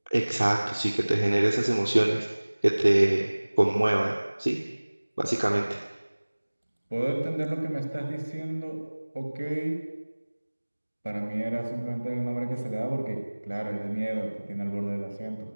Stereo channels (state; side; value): inverted; both; correlation -1.00